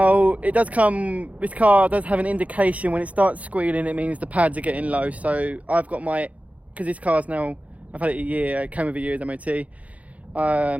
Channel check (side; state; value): left; late; 0.068 ms